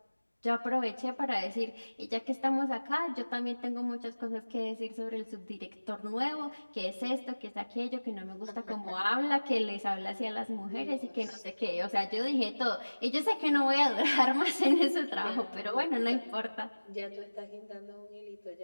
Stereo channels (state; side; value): inverted; both; correlation -1.00